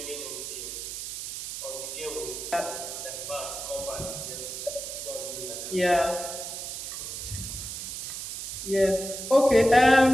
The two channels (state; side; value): noise; right; hiss, 7 dB below the sound